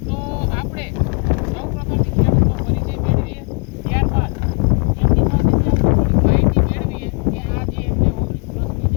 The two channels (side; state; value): right; quieter; 37.5 dB